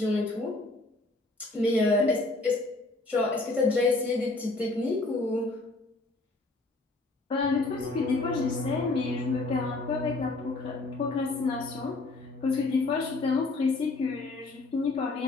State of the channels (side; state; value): right; quieter; 3.1 dB